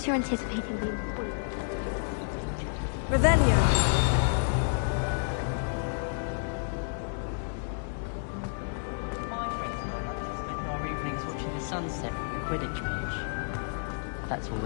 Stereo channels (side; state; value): right; silent; digital silence